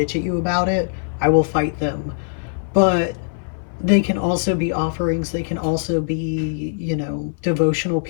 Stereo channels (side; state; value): right; silent; 65 dB below the other